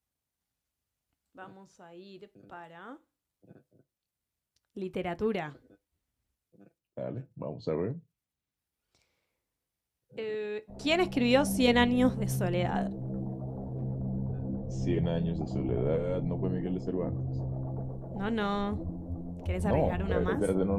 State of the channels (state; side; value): identical; both; correlation 1.00